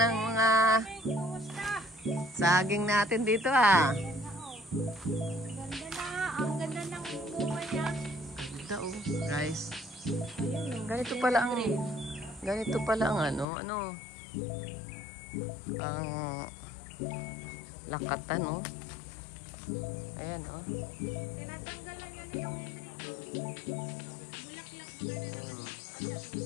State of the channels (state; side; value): drops out; right; at 13.5 s